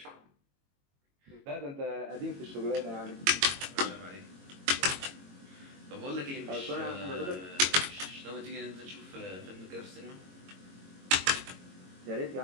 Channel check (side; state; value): left; late; 22 ms